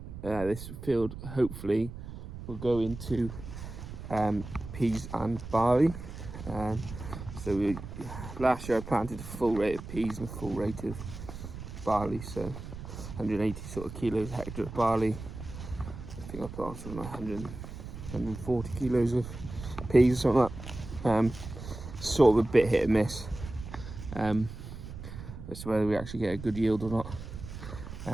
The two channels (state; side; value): noise; right; rumble, 11 dB below the sound